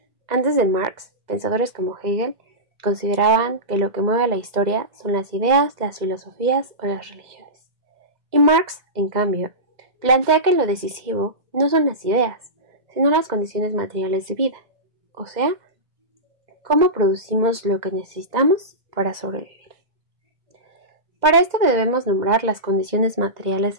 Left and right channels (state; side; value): late; left; 2.0 ms